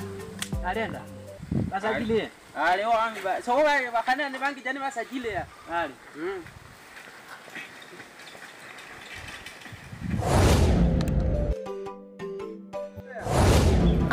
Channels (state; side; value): identical; both; correlation 1.00